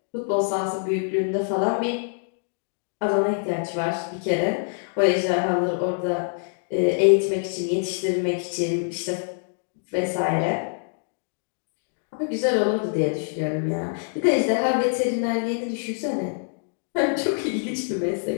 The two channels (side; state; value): right; silent; digital silence